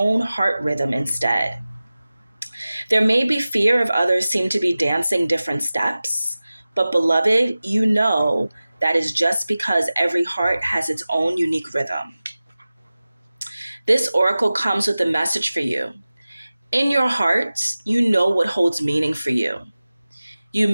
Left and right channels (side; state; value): both; inverted; correlation -0.97